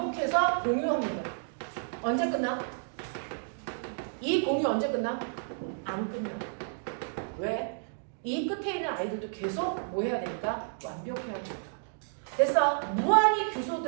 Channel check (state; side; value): silent; left; digital silence